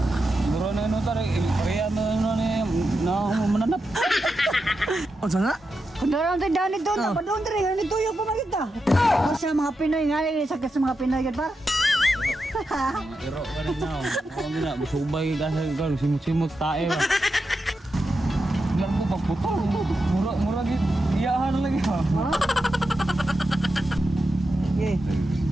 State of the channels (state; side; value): normal; both; correlation 0.88